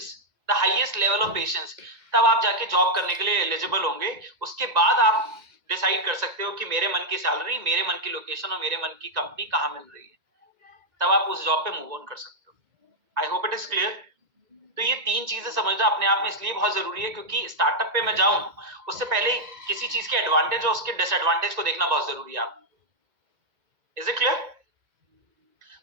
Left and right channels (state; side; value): late; left; 2.1 ms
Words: the highest level of patience, तब आप जाके जॉब करने के लिए एलिजिबल होंगे। उसके बाद आप डिसाइड कर सकते हो कि मेरे मन की सैलरी, मेरे मन की लोकेशन और मेरे मन की कंपनी कहां मिल रही है, तब आप उस जॉब पे मूव ऑन कर सकते हो। आई होप इट इज क्लियर। तो ये तीन चीजें समझना अपने आप में इसलिए बहुत जरूरी है क्योंकि स्टार्टअप पे मैं जाऊं उससे पहले किसी चीज के एडवांटेज और उसके डिसएडवांटेज को देखना बहुत जरूरी है। आप, इज इट क्लियर?